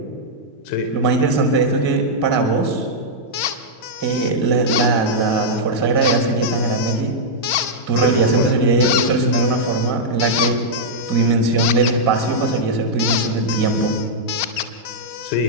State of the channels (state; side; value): late; right; 2.7 ms